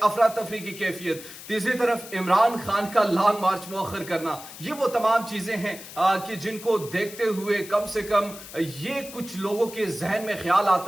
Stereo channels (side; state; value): left; noise; hiss, 14 dB below the sound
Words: तफरी की कैफियत, तीसरी तरफ इमरान खान का लॉन्ग मार्च मौखर करना, ये वो तमाम चीजें हैं कि जिनको देखते हुए कम से कम ये कुछ लोगों के जहन में ख्याल